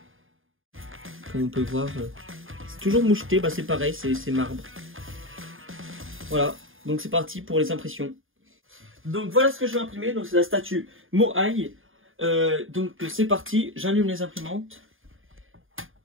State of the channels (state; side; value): late; left; 0.59 ms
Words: Comme on peut voir, c'est toujours moucheté, c'est pareil, c'est marbre. Voilà, donc c'est parti pour les impressions. Donc voilà ce que je vais imprimer, donc c'est la statue Moai. Donc c'est parti, j'allume les imprimantes.